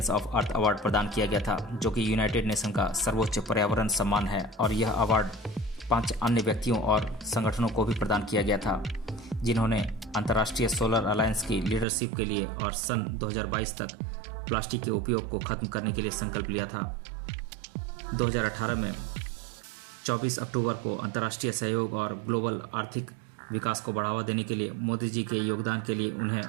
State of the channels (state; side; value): drops out; left; at 11.9 s